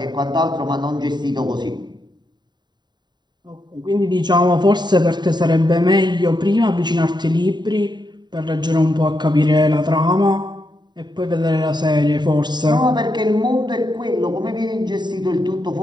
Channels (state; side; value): late; left; 0.21 ms